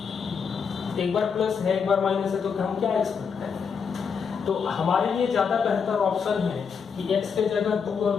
एक बार प्लस है एक बार माइनस है, तो हम क्या एक्सपेक्ट करें? तो हमारे लिए ज्यादा बेहतर ऑप्शन है कि x के जगह 2 और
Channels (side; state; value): right; quieter; 6.2 dB